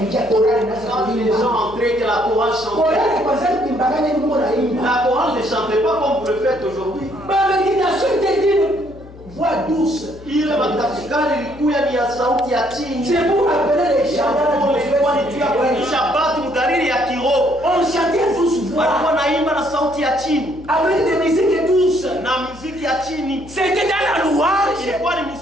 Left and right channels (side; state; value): left; noise; hum, 19 dB below the sound